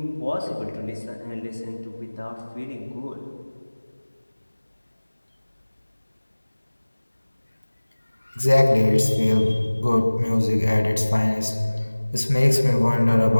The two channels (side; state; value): both; inverted; correlation -1.00